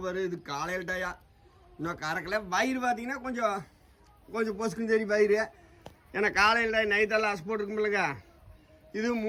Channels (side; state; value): both; identical; correlation 1.00